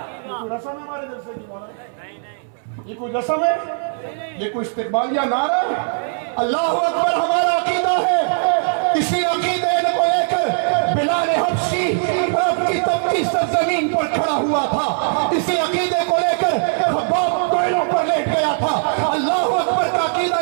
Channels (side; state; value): left; silent; 66 dB below the other